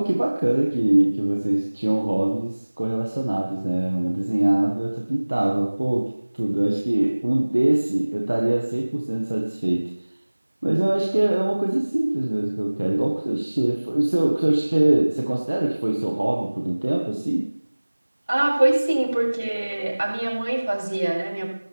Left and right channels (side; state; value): both; inverted; correlation -1.00